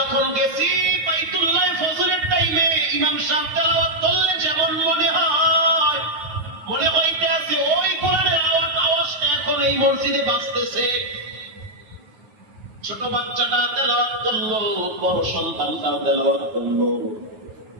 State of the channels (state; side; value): late; left; 9.5 ms